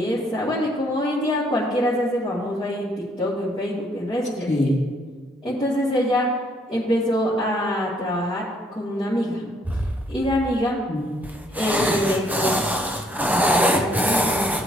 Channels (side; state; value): both; normal; correlation 0.67